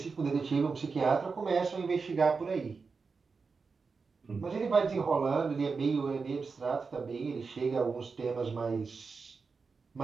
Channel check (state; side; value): quieter; left; 4.8 dB